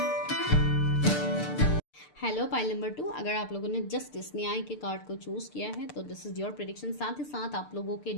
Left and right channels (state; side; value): late; right; 6.7 ms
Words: Hello pile number 2, अगर आप लोगों ने जस्ट इस न्याय के कार्ड को चूज किया है तो दिस इज योर प्रेडिक्शन। साथ ही साथ आप लोगों के